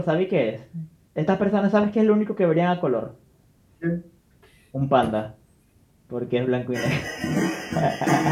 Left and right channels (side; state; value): both; identical; correlation 1.00